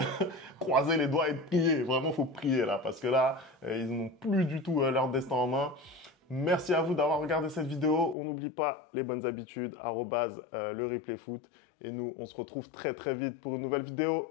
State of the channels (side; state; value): right; drops out; at 8.2 s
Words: croiser les doigts et prier. Vraiment, il faut prier là, parce que là, ils n'ont plus du tout leur destin en main. Merci à vous d'avoir regardé cette vidéo. On n'oublie pas les bonnes habitudes, @le replay foot. Et nous, on se retrouve très très vite pour une nouvelle vidéo.